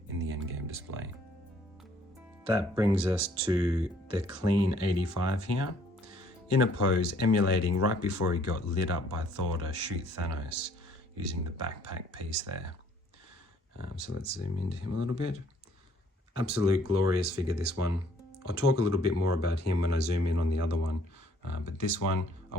in the Endgame display. That brings us to the Clean 85 here, in a pose emulating right before he got lit up by Thor to shoot Thanos, using the backpack piece there. So let's zoom into him a little bit. Absolute glorious figure, this one. I'll talk a little bit more about him when I zoom in on the other one, but this one, I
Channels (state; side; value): normal; both; correlation 0.62